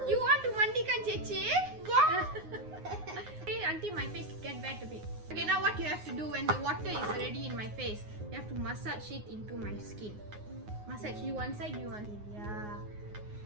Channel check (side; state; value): left; late; 9.6 ms